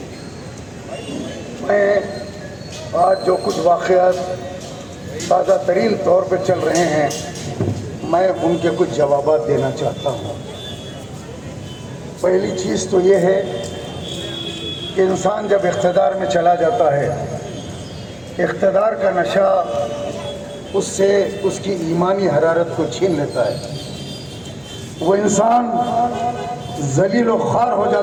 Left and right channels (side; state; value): right; noise; hum, 29 dB below the sound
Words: मैं आज जो कुछ वाक़यात ताज़ा तरीन तौर पर चल रहे हैं, मैं उनके कुछ जवाबात देना चाहता हूँ। पहली चीज़ तो ये है कि इंसान जब इख्तिदार में चला जाता है, इख्तिदार का नशा उससे उसकी ईमानी हरारत को छीन लेता है। वो इंसान ज़लील व ख़ार हो